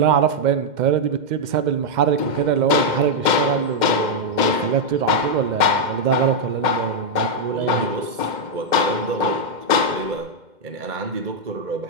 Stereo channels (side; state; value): left; late; 2.1 ms